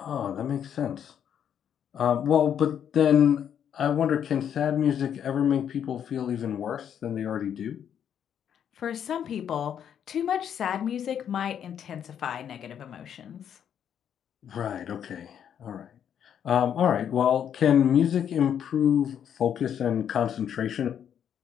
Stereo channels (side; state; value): right; quieter; 8.9 dB